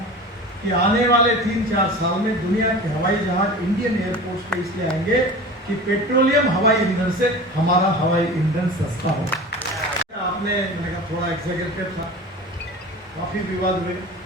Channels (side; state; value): both; normal; correlation 0.35